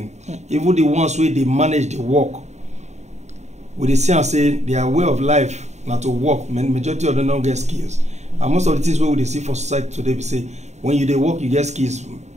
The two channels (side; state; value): left; late; 0.33 ms